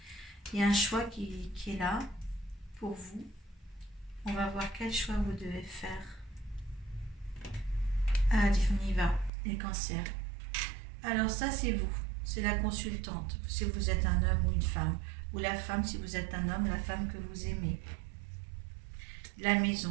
Il y a un choix qui est là pour vous. On va voir quel choix vous devez faire. Allez, on y va, les cancers. Alors, ça, c'est vous. C'est la consultante. Si vous êtes un homme ou une femme. Ou la femme, si vous êtes un homme, la femme que vous aimez. La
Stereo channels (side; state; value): left; drops out; at 9.3 s